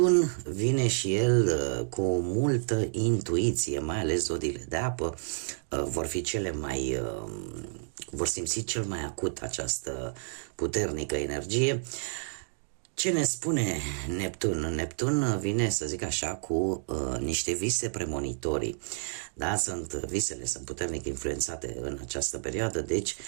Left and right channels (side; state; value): left; silent; digital silence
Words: vine și el cu multă intuiție, mai ales zodiile de apă vor simți cel mai acut această puternică energie. Ce ne spune Neptun? Neptun vine, să zic așa, cu niște vise premonitorii. Da, visele sunt puternic influențate în această perioadă, deci